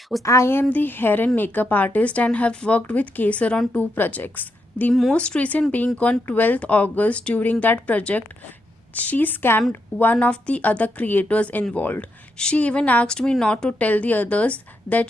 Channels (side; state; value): both; normal; correlation 0.81